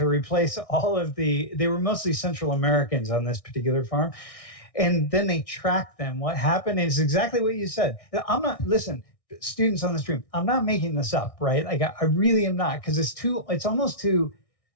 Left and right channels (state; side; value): late; right; 1.6 ms